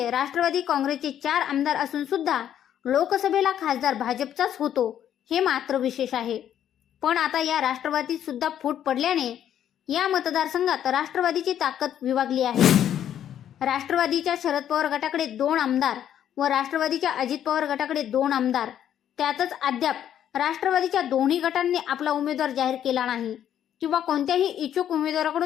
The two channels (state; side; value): quieter; right; 10.3 dB